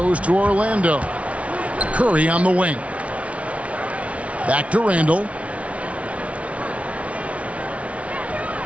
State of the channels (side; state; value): left; late; 0.064 ms